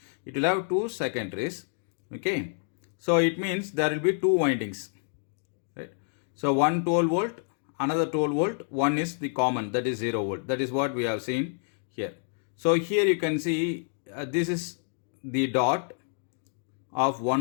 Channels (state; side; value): silent; right; 59 dB below the other